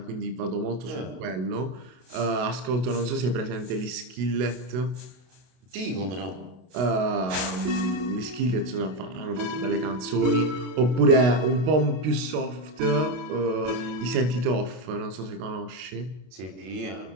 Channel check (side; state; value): left; late; 32 ms